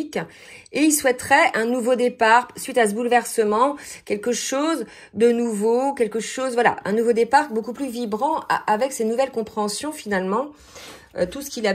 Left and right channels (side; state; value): both; identical; correlation 1.00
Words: Et il souhaiterait un nouveau départ suite à ce bouleversement. Quelque chose de nouveau, quelque chose, voilà, un nouveau départ beaucoup plus vibrant avec ces nouvelles compréhensions finalement. Tout ce qu'il